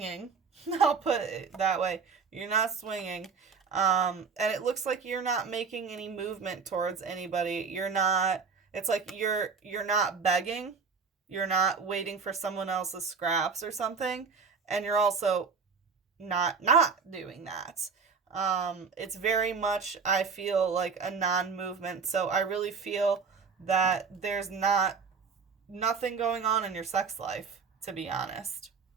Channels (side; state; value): left; quieter; 5.5 dB